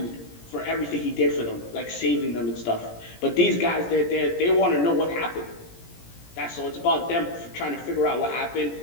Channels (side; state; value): right; late; 17 ms